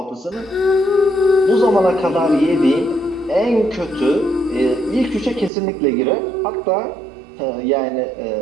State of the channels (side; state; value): left; drops out; at 5.5 s